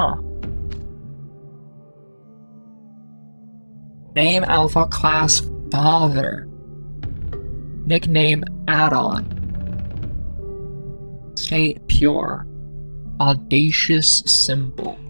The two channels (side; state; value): both; inverted; correlation -1.00